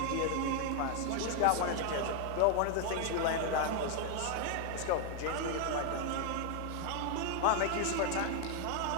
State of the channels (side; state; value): both; different; correlation 0.00